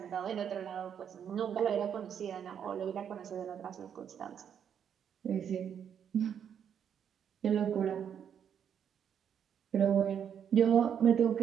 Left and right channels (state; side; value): quieter; left; 8.3 dB